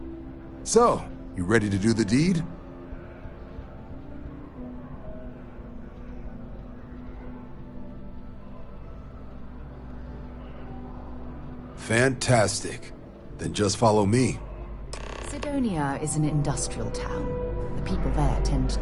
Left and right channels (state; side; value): identical; both; correlation 1.00